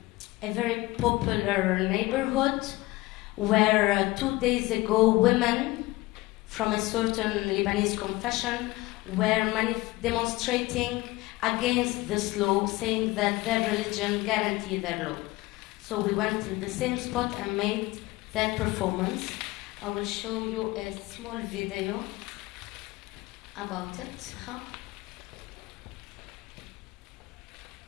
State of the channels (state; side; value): quieter; right; 20.3 dB